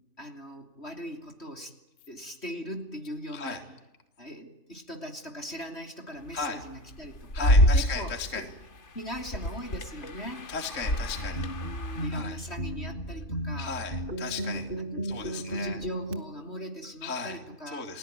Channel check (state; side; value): late; right; 3.1 ms